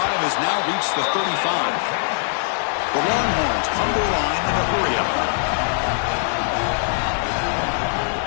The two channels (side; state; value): right; silent; digital silence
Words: has now reached the 35. The Longhorns come to the line in a hurry-up.